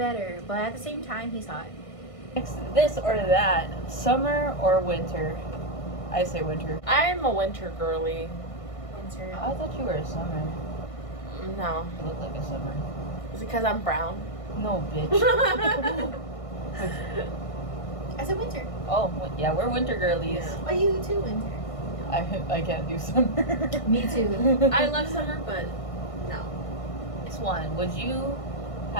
but at the same time, he's hot. Next, this or that, summer or winter? I say winter. I'm a winter girly. Winter. I thought you were a summer. No. You look like a summer. Is it because I'm brown? No, bitch. I said winter. Oh, yeah, we're winter girlies. Oh, you too, winter. I can't do summer. Me too. I love summer, but no. Next one, would you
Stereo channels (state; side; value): late; right; 1.6 ms